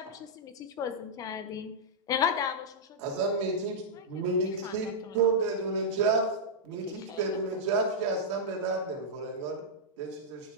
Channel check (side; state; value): both; normal; correlation -0.08